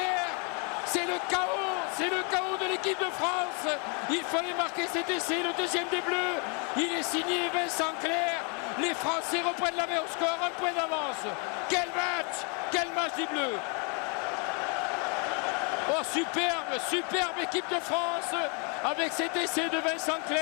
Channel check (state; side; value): quieter; right; 36.1 dB